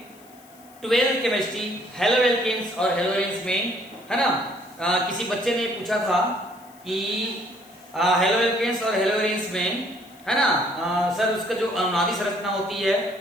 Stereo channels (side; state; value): left; noise; hiss, 26 dB below the sound